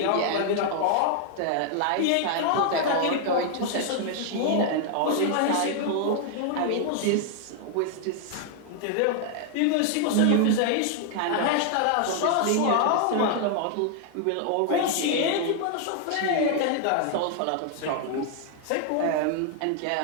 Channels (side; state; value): both; different; correlation 0.00